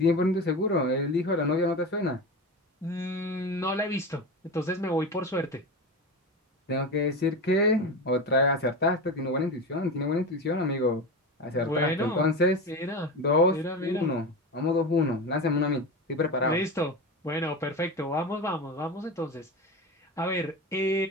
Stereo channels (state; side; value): normal; both; correlation 0.24